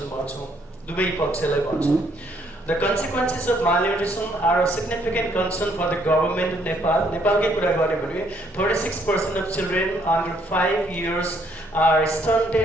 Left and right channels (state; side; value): normal; both; correlation 0.68